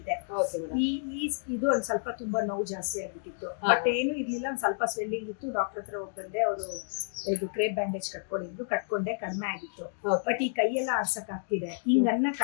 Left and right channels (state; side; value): silent; right; digital silence